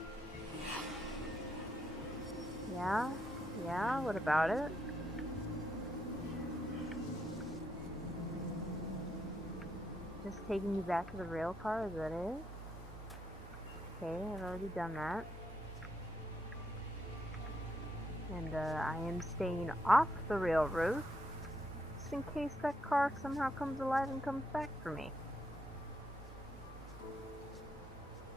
Yeah, what about it? Just taking you back to the rail car, is that it? Okay, I've already done that. And I am staying off the railroad, just in case that car somehow comes alive and comes back for me.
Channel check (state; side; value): normal; both; correlation 0.78